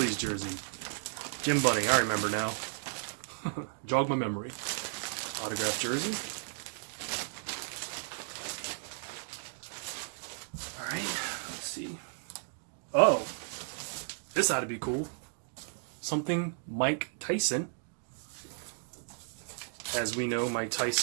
jersey. Jim Bunning, I remember now. Jog my memory. Autographed jersey. Alright, let's see. Oh, this ought to be cool. Something Mike Tyson. As we know, Mike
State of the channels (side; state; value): left; silent; digital silence